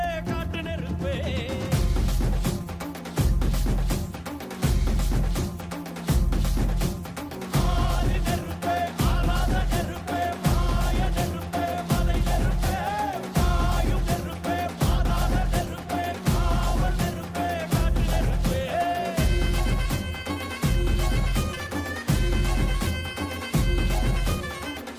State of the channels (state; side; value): identical; both; correlation 1.00